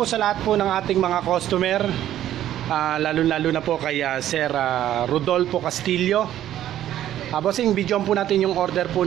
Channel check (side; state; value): left; quieter; 12.1 dB